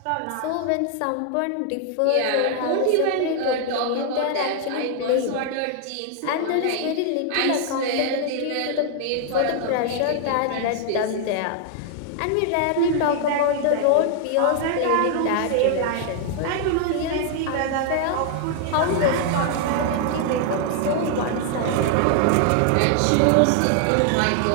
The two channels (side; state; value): both; different; correlation 0.00